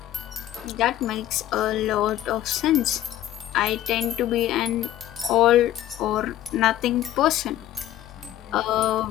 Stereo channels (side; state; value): right; quieter; 12.9 dB